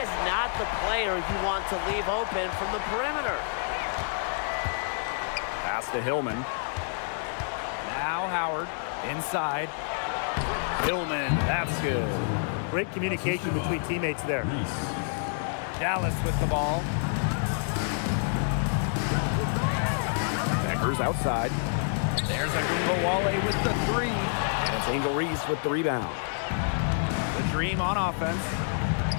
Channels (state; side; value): silent; right; 59 dB below the other